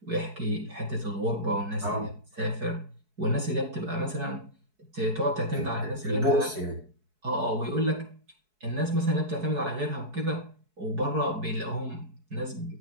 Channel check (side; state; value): left; late; 4.6 ms